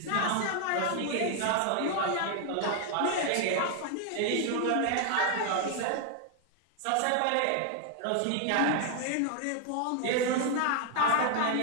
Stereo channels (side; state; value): both; different; correlation 0.00